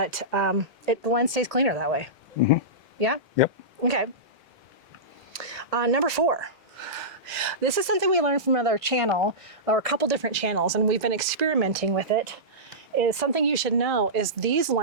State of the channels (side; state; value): both; normal; correlation -0.17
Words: the lens stays cleaner that way. Mm-hmm. Yeah? Yep. Okay. Number 4. This is something we learned from another channel, or a couple different channels, and we've been experimenting with it. Is something you should know is these